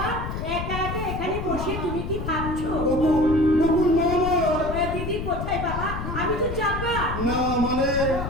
একা একা এখানে বসে তুমি কি ভাবছো? বকুল বকুল মামা। দিদি কোথায় বাবা? আমি তো চাপা। না মানে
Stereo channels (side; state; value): left; noise; rumble, 5 dB below the sound